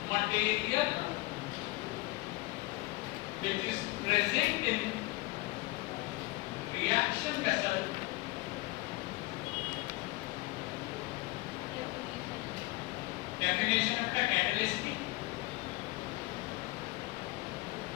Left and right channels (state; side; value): quieter; right; 21.9 dB